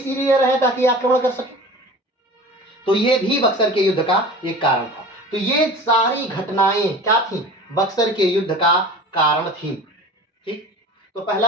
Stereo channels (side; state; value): both; normal; correlation 0.37